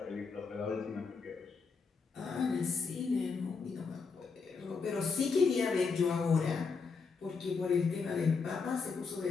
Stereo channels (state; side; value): quieter; right; 5.0 dB